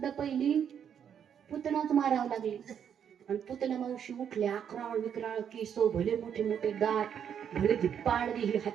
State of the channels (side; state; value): left; quieter; 8.4 dB